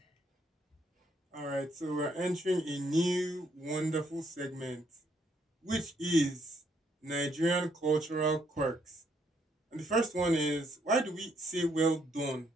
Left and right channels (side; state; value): both; normal; correlation 0.72